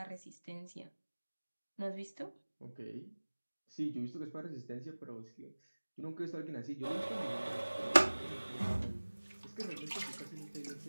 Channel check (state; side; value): inverted; both; correlation -1.00